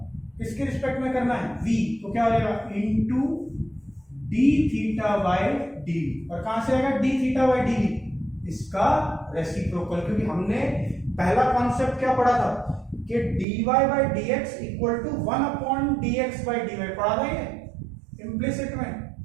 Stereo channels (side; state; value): left; drops out; at 13.5 s